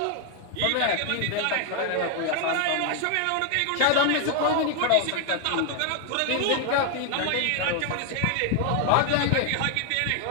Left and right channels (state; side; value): different; both; correlation 0.00